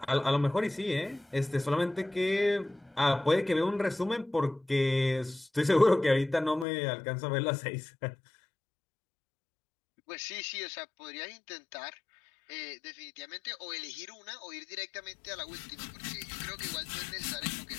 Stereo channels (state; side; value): drops out; right; at 6.7 s